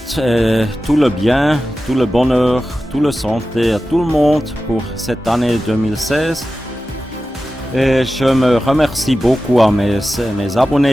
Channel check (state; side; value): normal; both; correlation 0.94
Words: tout le bien, tout le bonheur, tout le santé à tout le monde pour cette année 2016. Et je me remercie beaucoup à mes